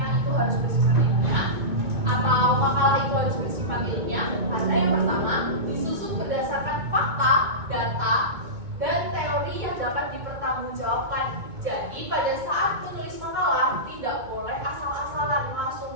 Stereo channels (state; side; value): late; left; 2.2 ms